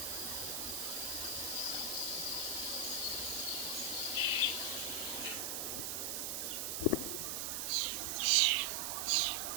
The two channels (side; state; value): right; noise; hiss, 2 dB below the sound